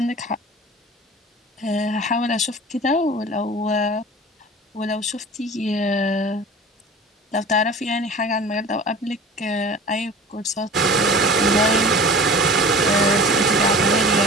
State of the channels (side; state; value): both; normal; correlation 0.40